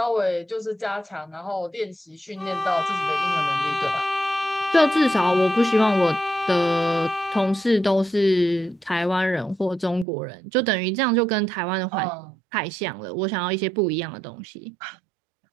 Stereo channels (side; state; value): left; drops out; at 10.1 s